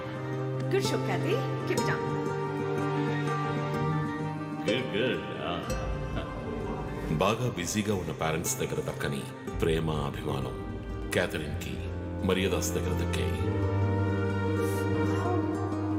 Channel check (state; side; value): identical; both; correlation 1.00